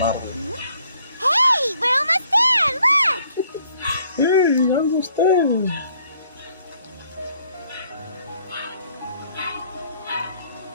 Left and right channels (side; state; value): both; inverted; correlation -0.65